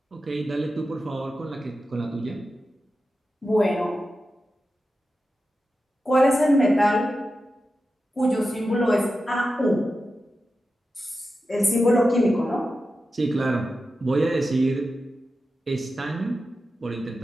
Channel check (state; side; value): normal; both; correlation 0.91